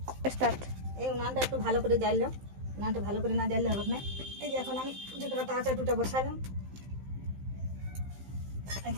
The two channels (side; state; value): left; late; 15 ms